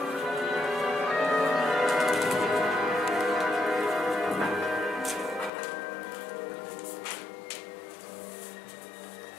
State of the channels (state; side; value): drops out; right; at 5.5 s